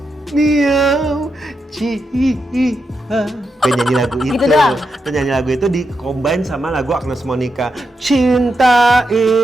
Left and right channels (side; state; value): both; normal; correlation 0.85